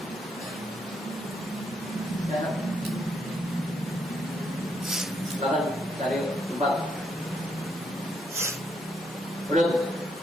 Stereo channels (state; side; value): normal; both; correlation 0.76